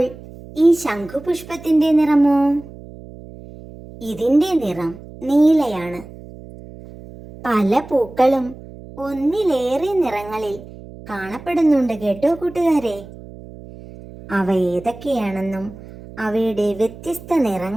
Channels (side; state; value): right; noise; hum, 17 dB below the sound